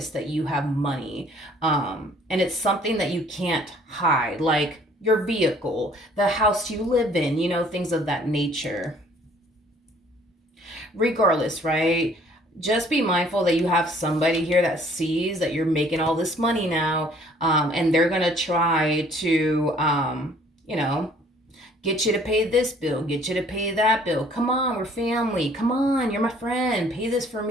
that you have money. And it's something that you can't hide, like your vehicle, the house you live in, things of that nature. Regardless, right? Just be mindful that you have somebody here that sees that you're making all this money now, and they're gonna try to, get you to pay this bill, get you to pay that bill. Come on, we're family. Come on, you're my friend. Pay this for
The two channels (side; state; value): both; normal; correlation 0.58